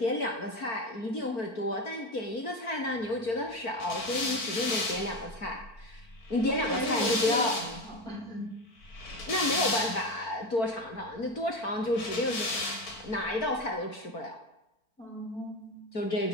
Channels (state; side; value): late; right; 4.5 ms